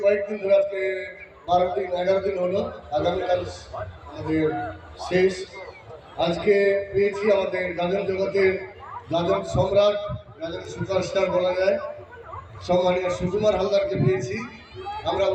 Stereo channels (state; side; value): identical; both; correlation 1.00